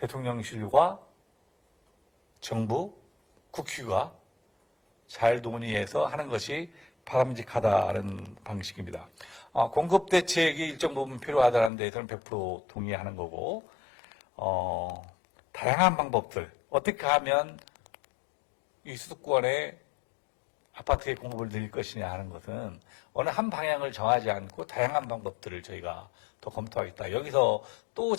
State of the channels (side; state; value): right; drops out; at 11.7 s